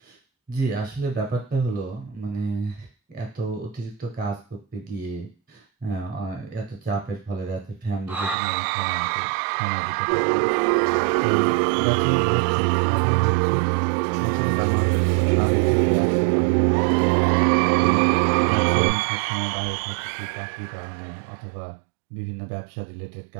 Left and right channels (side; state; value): left; drops out; at 8.3 s